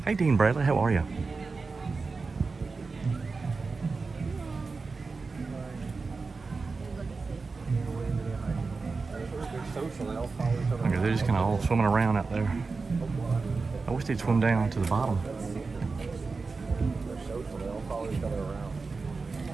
Hey, Dean Bradley, how are you? Okay, they're just kind of all swimming around out there. I wish they'd swim down to the bottom.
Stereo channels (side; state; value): left; quieter; 4.2 dB